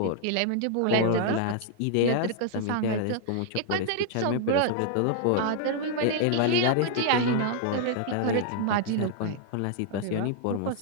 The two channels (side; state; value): both; different; correlation 0.00